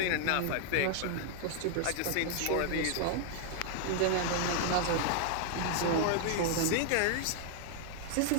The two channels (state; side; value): different; both; correlation 0.00